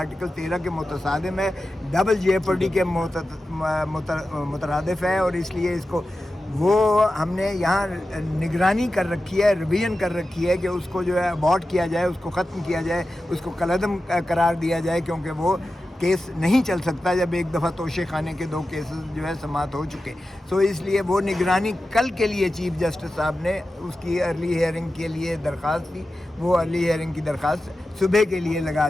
13 के मुतसादिम है, डबल जेपर्डी के मुतरादिफ है, और इसलिए इसको वो हमने यहाँ निगरानी कर रखी है, रिवीजन कर रखी है कि उसको जो है अबॉर्ट किया जाए, उसको ख़त्म किया जाए, उसको कलअदम करार दिया जाए, क्योंकि वो केस नहीं चल सकता जब एक दफ़ा तोशे खाने के 2 केसेस जो है समाप्त हो चुके। सो इसलिए वो निगरानी कल के लिए चीफ जस्टिस साहब ने उसकी अर्ली हियरिंग के लिए दरख्वास्त दी, वो अर्ली हियरिंग की दरख्वास्त सुबह के लिए लगा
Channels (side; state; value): both; normal; correlation 0.93